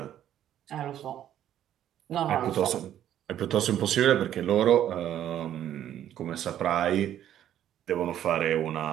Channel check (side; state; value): left; quieter; 11.1 dB